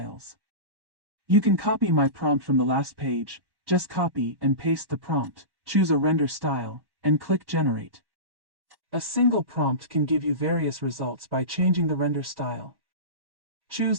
You can copy my prompt from the last page. Just copy and paste the prompt, choose a render style, and click Generate. A single prompt can give you various results by changing the render style.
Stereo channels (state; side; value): late; left; 1.1 ms